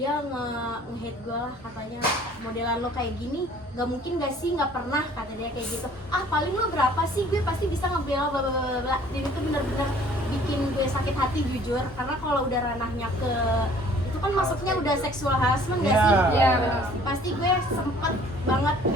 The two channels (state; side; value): normal; both; correlation 0.54